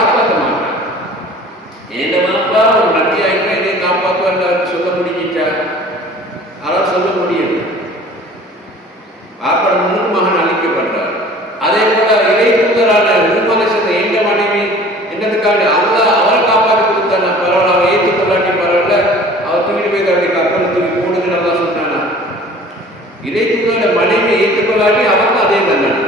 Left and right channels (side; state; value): both; normal; correlation 0.47